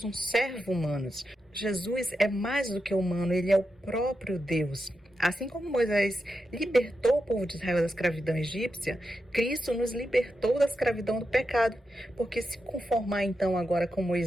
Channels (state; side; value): normal; both; correlation 0.88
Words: um servo humano. Jesus é mais do que humano, ele é o próprio Deus. Assim como Moisés libertou o povo de Israel da escravidão egípcia, Cristo nos libertou da escravidão do pecado. Porque se conformar então agora com